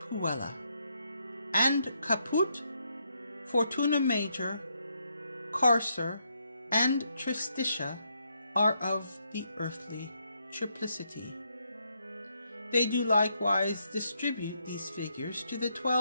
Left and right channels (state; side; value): inverted; both; correlation -0.77